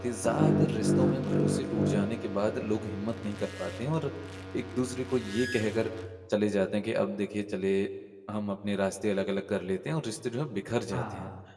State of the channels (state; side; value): identical; both; correlation 1.00